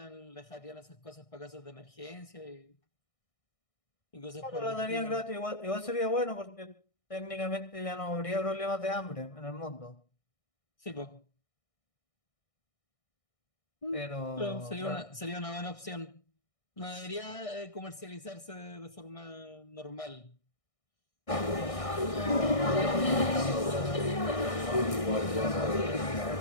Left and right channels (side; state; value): right; late; 1.6 ms